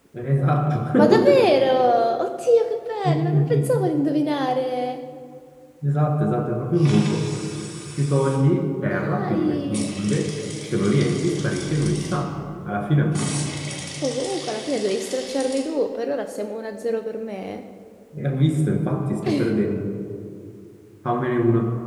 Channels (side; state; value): both; identical; correlation 1.00